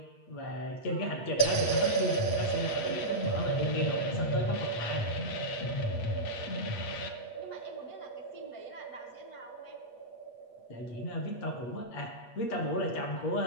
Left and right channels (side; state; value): right; late; 8.4 ms